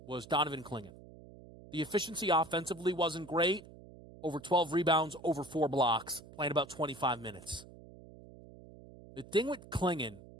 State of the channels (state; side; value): noise; right; hum, 19 dB below the sound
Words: was Donovan Clingan. The efficiency offensively wasn't great. Over 12 rebounds, over 4 blocks, playing about 25 minutes. The thing with Clingan, and